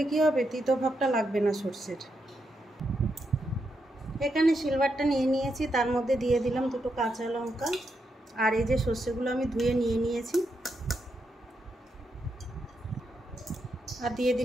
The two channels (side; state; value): both; normal; correlation 0.83